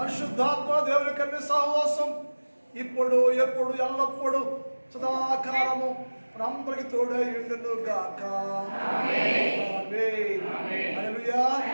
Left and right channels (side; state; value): both; inverted; correlation -1.00